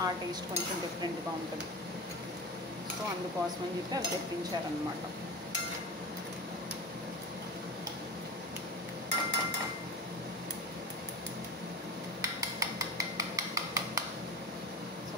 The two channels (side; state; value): both; normal; correlation 0.29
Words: ఆ టేస్ట్ కొంచెం డిఫరెంట్గా ఉంటుంది. సో అందుకోసమని చెప్పి అవి తెప్పించారనమాట.